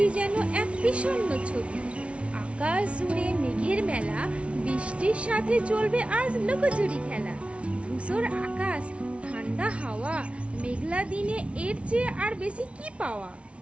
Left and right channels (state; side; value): late; left; 0.061 ms